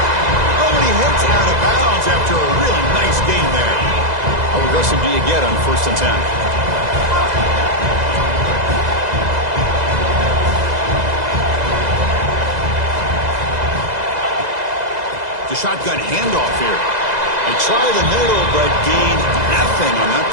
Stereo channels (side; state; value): left; late; 2.0 ms